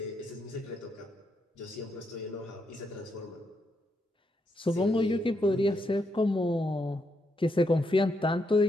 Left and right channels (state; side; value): normal; both; correlation 0.79